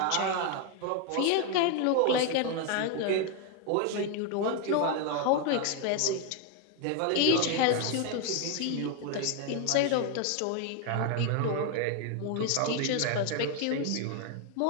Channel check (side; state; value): both; different; correlation 0.00